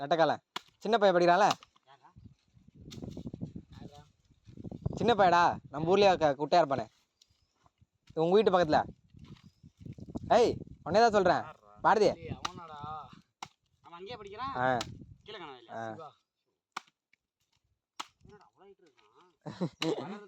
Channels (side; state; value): both; identical; correlation 1.00